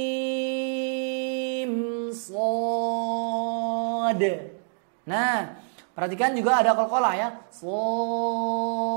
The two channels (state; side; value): silent; left; digital silence